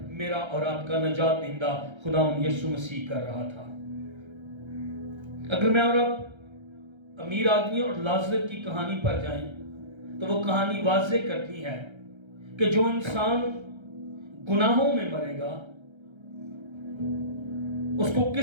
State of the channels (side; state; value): left; late; 1.3 ms